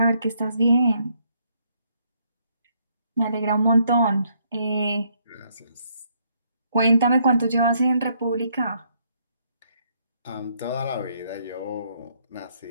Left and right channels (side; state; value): both; inverted; correlation -0.71